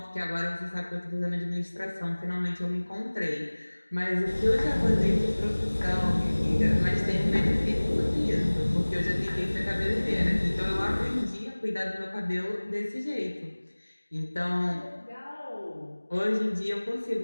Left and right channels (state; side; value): inverted; both; correlation -1.00